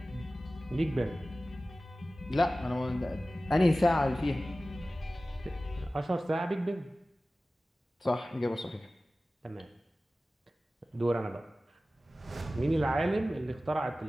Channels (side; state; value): both; normal; correlation 0.96